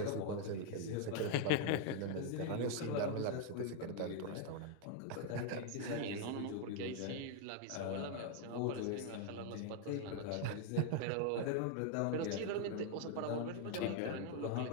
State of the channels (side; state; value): both; different; correlation 0.00